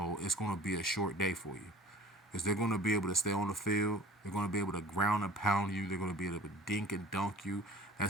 it's going to be a short day for you. Because they're going to be able to stay on the field. They're going to be able to ground and pound you. They're going to be able to dink and dunk you.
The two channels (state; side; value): normal; both; correlation 0.45